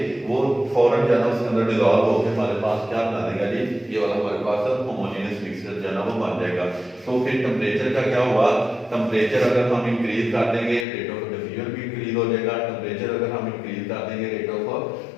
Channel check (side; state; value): right; drops out; at 10.9 s